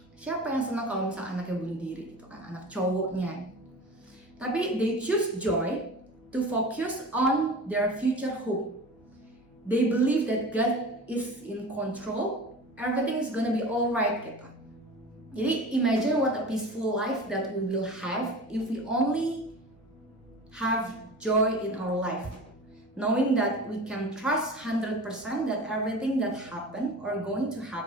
Siapa yang senang kalau misalnya anaknya bunuh diri gitu kan, anak cowoknya. Tapi they choose joy to focus on their future hope. They believe that God is in control, everything is gonna be alright gitu. Jadi imagine what a peaceful life that we will have if we only have joy in our life. Knowing that we can trust 100% that everything that happen or going to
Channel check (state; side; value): normal; both; correlation 0.35